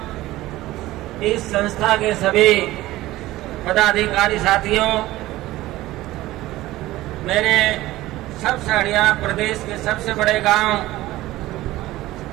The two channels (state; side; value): quieter; left; 16.9 dB